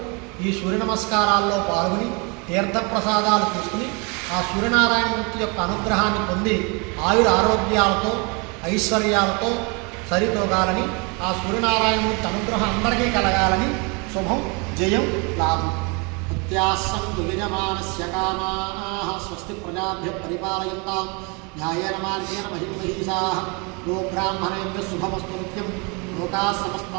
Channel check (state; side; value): quieter; left; 31.2 dB